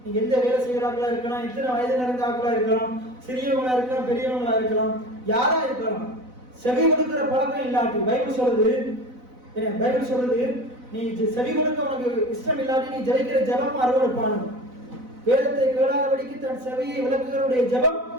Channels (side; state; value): left; late; 4.0 ms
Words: நீங்க எந்த வேலை செய்யறாங்களா இருக்கலாம், எத்தனை வயது நிறைந்த ஆக்களா இருக்கலாம், சிறியவங்களா இருக்கலாம், பெரியவங்களா இருக்கலாம், யாரா இருக்கலாம், செவி கொடுக்கிற பழக்கம் இல்லாட்டி, பைபிள் சொல்றது நீ செவி கொடுக்க உனக்கு இஷ்டம் இல்லாட்டி நீ ஜெபிக்கிற ஜெபம் அருவருப்பானது. வேதத்தை கேளாதபடிக்கு தன் செவியை விளக்குகிறவருடைய ஜெபம்